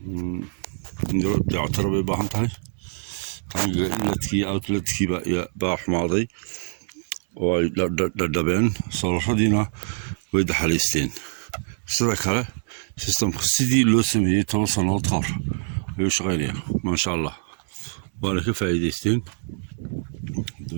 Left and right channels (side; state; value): left; silent; digital silence